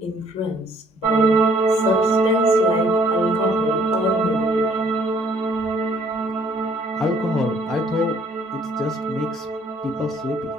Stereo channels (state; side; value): normal; both; correlation 0.62